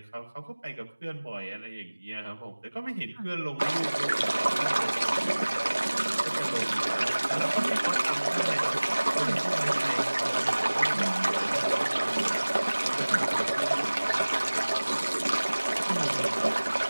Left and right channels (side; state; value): both; inverted; correlation -1.00